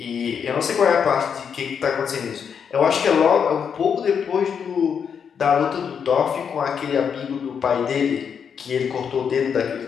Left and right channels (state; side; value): quieter; right; 7.1 dB